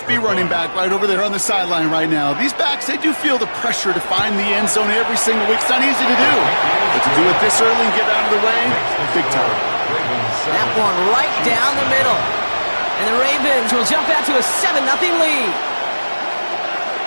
running back right over there on the sideline right now. These backs, they do feel the pressure to find the end zone every single week. It's not easy to do. But to do it this early and get out of the way, big time. That one right down the middle. And the Ravens will jump out to a 7-0 lead.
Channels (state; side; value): inverted; both; correlation -1.00